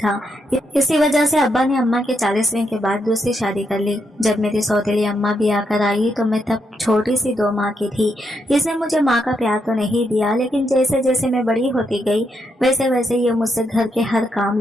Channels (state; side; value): normal; both; correlation 0.80